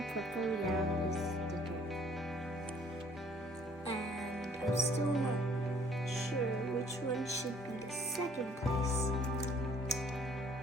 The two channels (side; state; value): both; normal; correlation 0.59